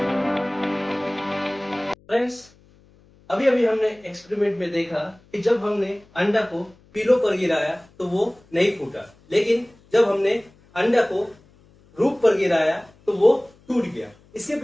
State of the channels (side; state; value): left; noise; hum, 29 dB below the sound